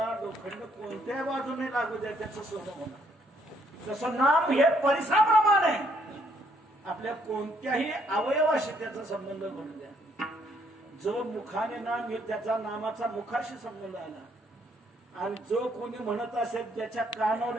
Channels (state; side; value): normal; both; correlation 0.69